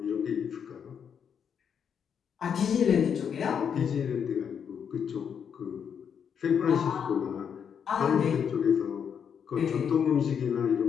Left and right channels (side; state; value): right; quieter; 7.6 dB